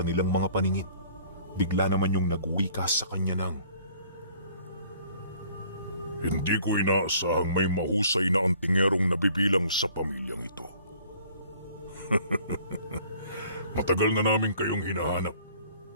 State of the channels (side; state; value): both; inverted; correlation -0.55